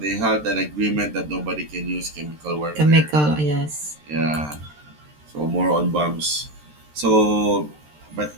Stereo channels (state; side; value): late; left; 13 ms